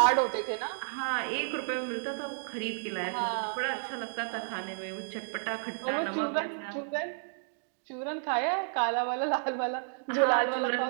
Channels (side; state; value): left; silent; digital silence